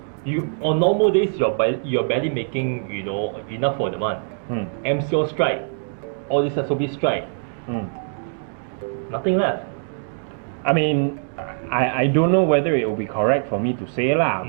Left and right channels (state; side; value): silent; left; digital silence